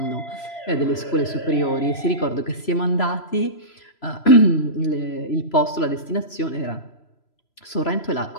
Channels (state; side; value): late; right; 3.0 ms